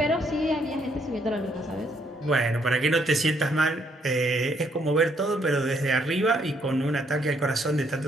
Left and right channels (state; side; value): normal; both; correlation 0.71